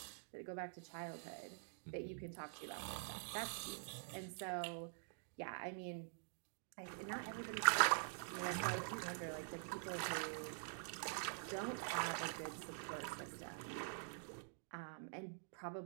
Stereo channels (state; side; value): silent; left; digital silence